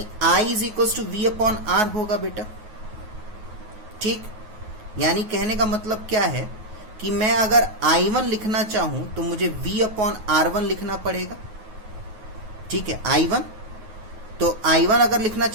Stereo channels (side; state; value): left; late; 9.4 ms